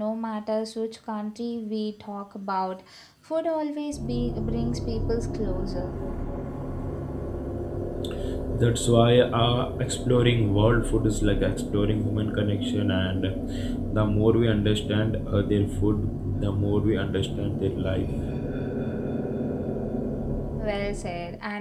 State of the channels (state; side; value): identical; both; correlation 1.00